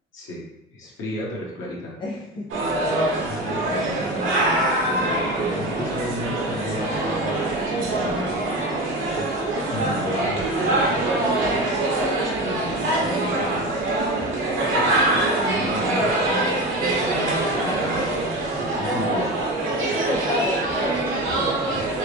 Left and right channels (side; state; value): both; normal; correlation 0.25